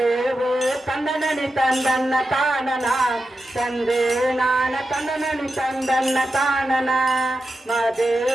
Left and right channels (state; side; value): normal; both; correlation 0.90